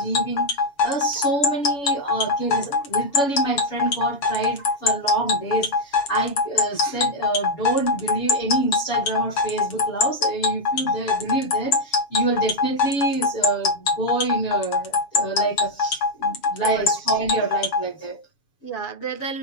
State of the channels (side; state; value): right; late; 7.1 ms